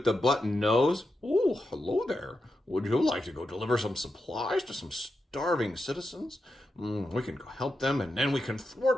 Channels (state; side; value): normal; both; correlation 0.87